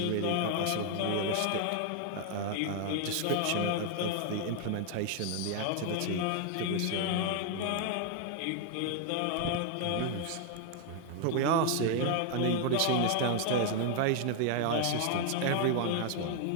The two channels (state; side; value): different; both; correlation 0.00